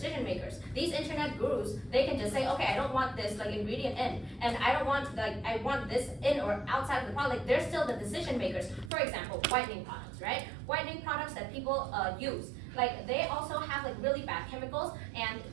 makers. These internet gurus, they can just say, okay, I don't want this ingredient in, and I don't want I want this in or outside of the product. They're still the decision makers. For example, whitening products, right? Whitening products that people use. They also have really bad chemicals, and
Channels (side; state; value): left; drops out; at 8.9 s